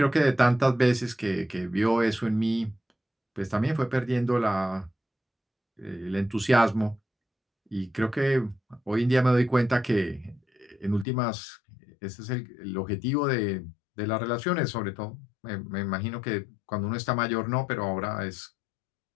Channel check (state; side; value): drops out; right; at 11.1 s